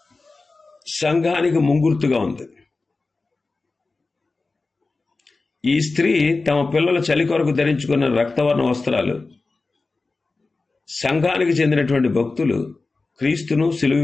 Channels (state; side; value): quieter; right; 3.7 dB